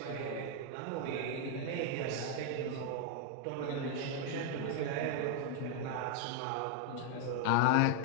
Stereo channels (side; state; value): both; different; correlation 0.00